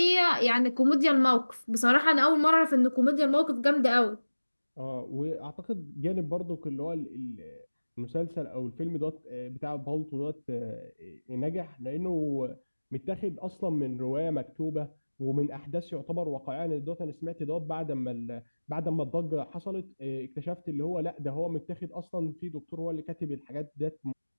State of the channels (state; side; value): inverted; both; correlation -1.00